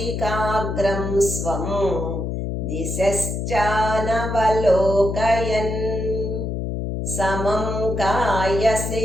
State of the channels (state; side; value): noise; left; hum, 3 dB below the sound